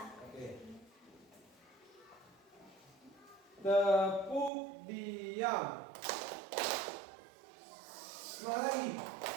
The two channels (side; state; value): left; drops out; at 4.5 s